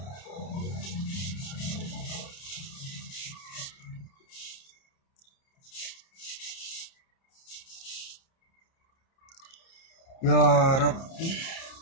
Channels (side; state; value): right; late; 30 ms